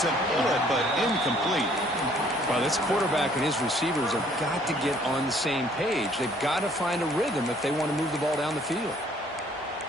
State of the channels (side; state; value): both; normal; correlation 0.60